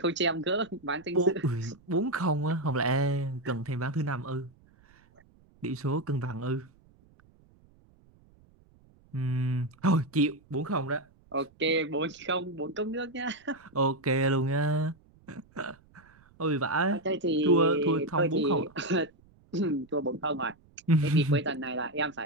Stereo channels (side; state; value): right; noise; rumble, 29 dB below the sound